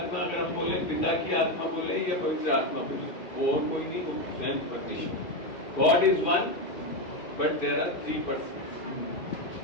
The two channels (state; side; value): late; right; 2.4 ms